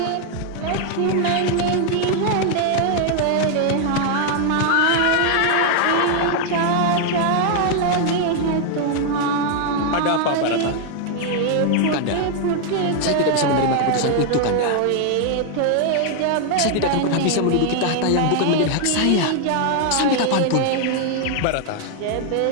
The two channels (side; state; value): both; different; correlation 0.00